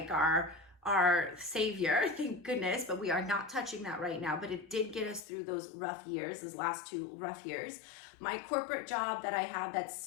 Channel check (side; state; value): right; drops out; at 5.2 s